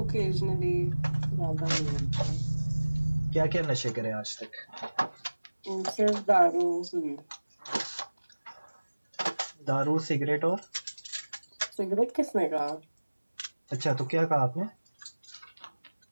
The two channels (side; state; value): both; inverted; correlation -1.00